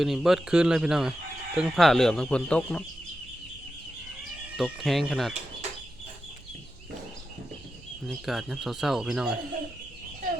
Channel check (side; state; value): right; noise; hum, 24 dB below the sound